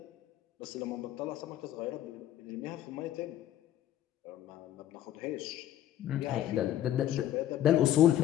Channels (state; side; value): quieter; right; 12.1 dB